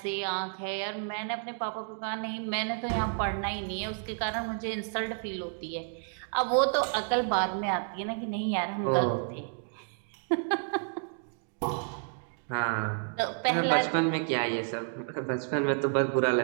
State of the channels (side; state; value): left; silent; 56 dB below the other